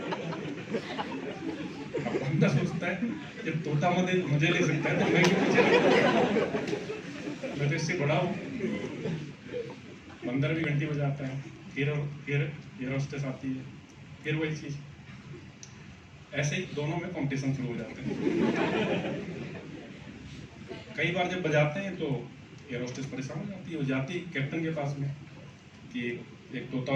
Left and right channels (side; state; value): both; identical; correlation 1.00